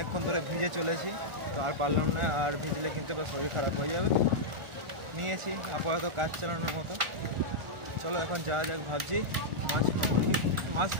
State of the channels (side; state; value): left; late; 1.4 ms